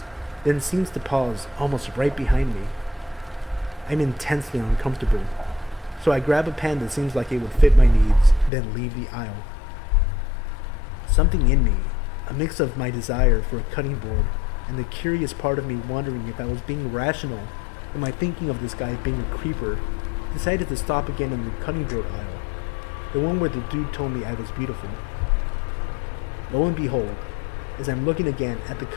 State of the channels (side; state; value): right; drops out; at 8.5 s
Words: then seems to pause almost right behind me. I'm intensely uncomfortable, so I grab a pan that seems like it would fit my needs, then leave the aisle. Something in me, a mix of my desire for a cutting board and the curious part of me wondering if I was being rational in my thinking of this guy being a creeper, decided to stop again in the cutting board aisle, the one where the dude told me I was beautiful. Lo and behold, as I'm looking again at the